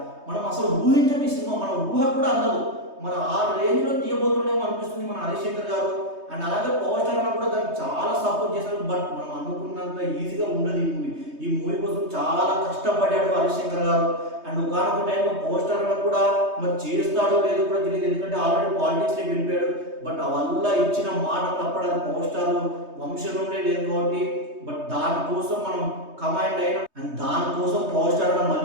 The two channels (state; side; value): late; left; 3.2 ms